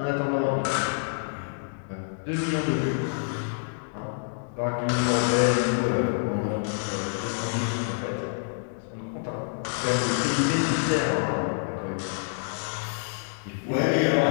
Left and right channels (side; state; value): right; silent; digital silence